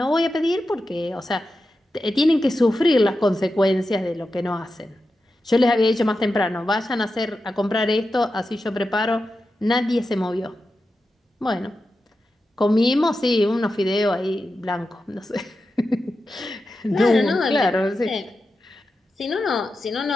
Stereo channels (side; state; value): both; normal; correlation 0.90